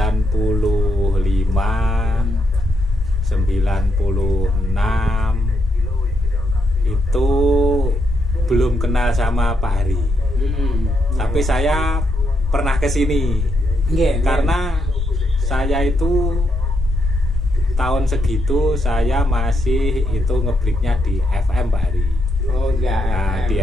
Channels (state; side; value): normal; both; correlation 0.79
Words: 96 itu belum kenal sama Pak Hari. Tapi saya pernah ke sini. Karena saya itu tahun segitu saya masih itu ngebreaknya di FM Pak Hari. Oh ya. Nah,